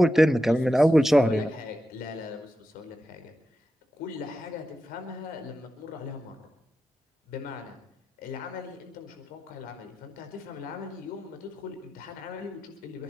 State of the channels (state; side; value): normal; both; correlation 0.90